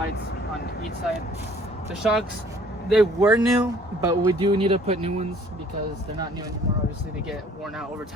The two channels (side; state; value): both; normal; correlation 0.56